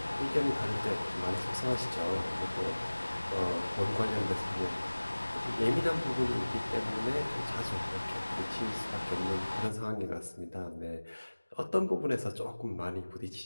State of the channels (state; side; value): inverted; both; correlation -1.00